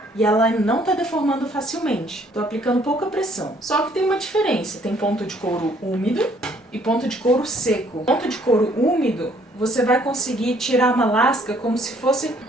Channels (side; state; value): both; normal; correlation 0.63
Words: e ela não está deformando facilmente. Estou aplicando pouca pressão. Só que tem uma diferença. Tem ponto de couro úmido e ponto de couro seco. Ponto de couro úmido, você vai conseguir tirar uma lasca como se fosse